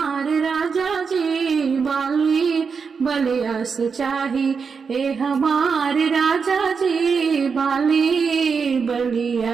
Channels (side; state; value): left; quieter; 5.6 dB